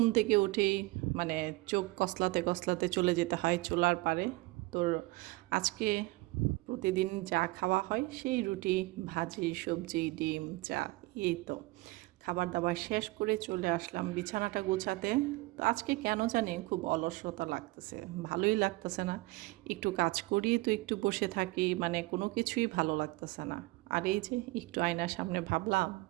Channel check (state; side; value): quieter; left; 22.1 dB